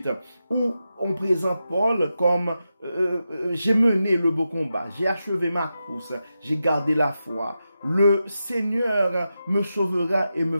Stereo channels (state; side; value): inverted; both; correlation -0.89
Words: où on présente Paul comme j'ai mené le beau combat, j'ai achevé ma course, j'ai gardé la foi, le Seigneur me sauvera et me